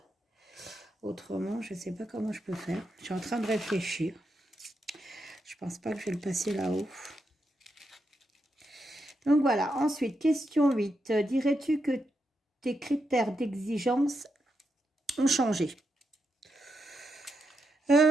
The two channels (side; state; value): both; normal; correlation 0.84